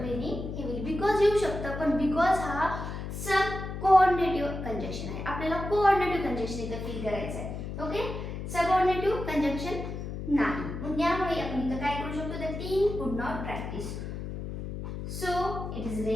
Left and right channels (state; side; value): noise; left; hum, 6 dB below the sound